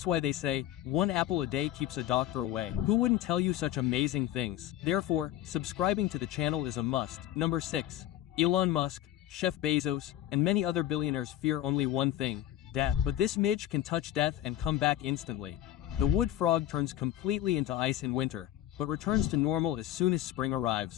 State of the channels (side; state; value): right; quieter; 13.0 dB